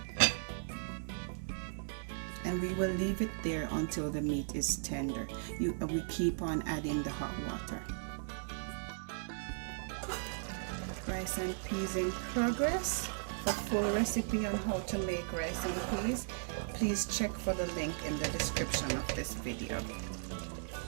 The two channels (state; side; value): silent; left; 53 dB below the other